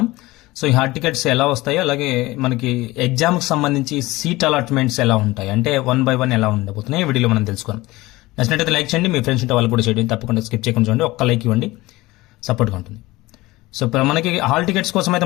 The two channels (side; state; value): right; quieter; 19.8 dB